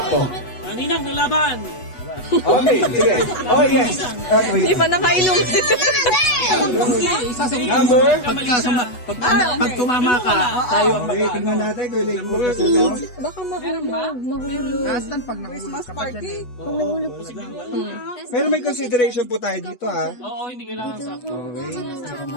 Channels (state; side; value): late; right; 8.1 ms